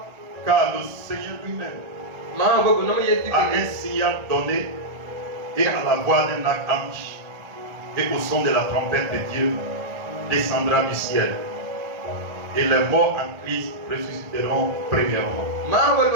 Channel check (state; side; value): late; left; 1.4 ms